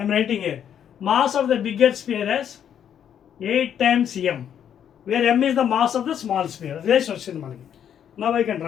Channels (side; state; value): right; quieter; 9.1 dB